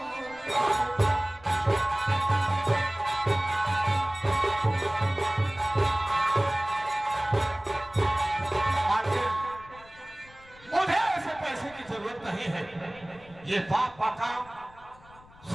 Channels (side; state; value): left; noise; rumble, 24 dB below the sound